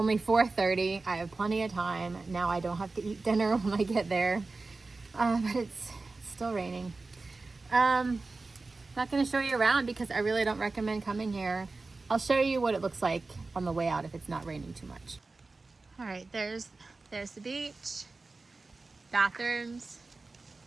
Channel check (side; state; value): left; quieter; 3.6 dB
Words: 4:30. I have plenty of time. Now I don't have to eat dinner when I get there, but it's still raining. Not going to show you around because I really don't recommend coming here. I'll show you what it looks like on the way out if it's not raining too much. All right, there's the beach, bathrooms,